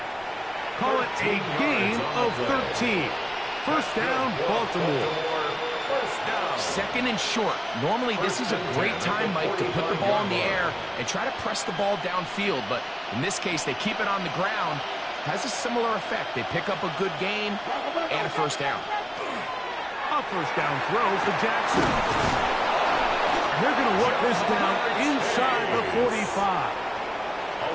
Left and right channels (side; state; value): both; identical; correlation 1.00